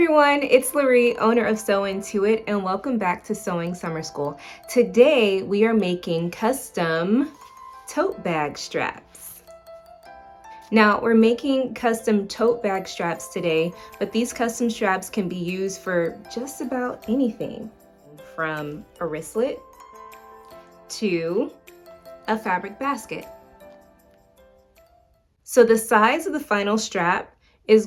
it's Larry, owner of SewIntoIt, and welcome back to Sewing Summer School. Today we are making custom tote bag straps. Now we're making custom tote bag straps today, but these custom straps can be used for just about anything, from a wristlet to a fabric basket. So the size of the final strap is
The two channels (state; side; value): identical; both; correlation 1.00